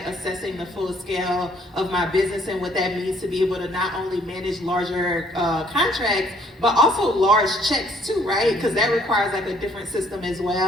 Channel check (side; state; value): both; normal; correlation 0.63